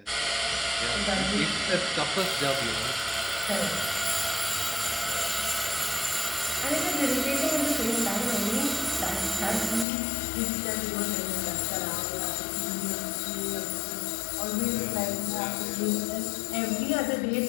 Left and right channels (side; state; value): right; drops out; at 9.9 s